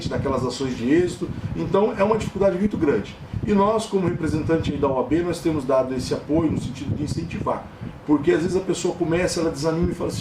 naquelas ações de êxito. Então é uma dificuldade muito grande. E nós, como representante da OAB, nós temos dado esse apoio no sentido de incentivar. Porque às vezes a pessoa começa, ela desanima e fala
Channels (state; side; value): identical; both; correlation 1.00